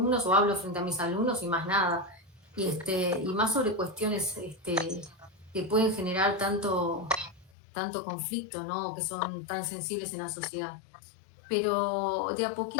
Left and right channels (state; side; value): drops out; right; at 7.5 s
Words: o hablo frente a mis alumnos y más nada. Y más sobre cuestiones que pueden generar tanto conflicto, ¿no? Que son tan sensibles en la sociedad. Pero de a